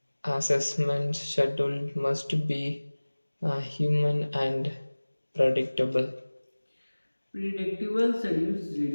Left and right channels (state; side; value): inverted; both; correlation -1.00